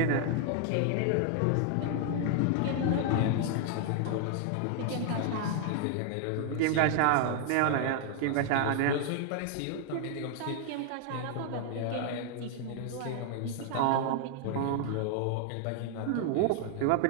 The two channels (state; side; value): different; both; correlation 0.00